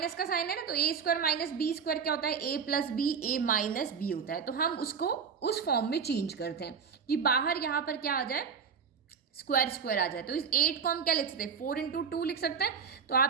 का साइन है ना, तो ए स्क्वायर माइनस बी स्क्वायर क्या होता है, ए plus B, A minus B होता है। तो हम उसको उस फॉर्म में चेंज करते हैं कि बाहर यहाँ पर क्या आ जाए, स्क्वायर स्क्वायर आ जाए। तो इस 8 को हम क्या लिख सकते हैं, 4 × 2 लिख सकते हैं। तो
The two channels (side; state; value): left; quieter; 6.4 dB